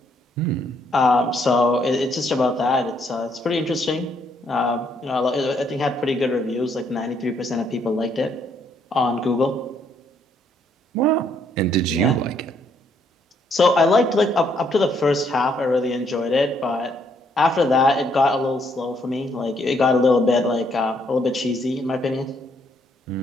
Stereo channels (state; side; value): normal; both; correlation 0.70